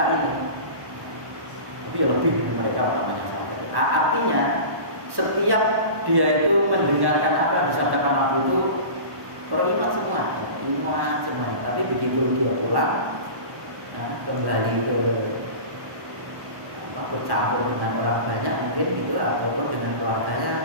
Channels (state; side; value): late; left; 1.1 ms